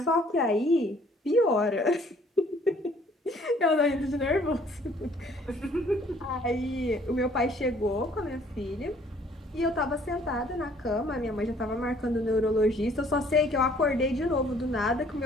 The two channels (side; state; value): both; normal; correlation 0.59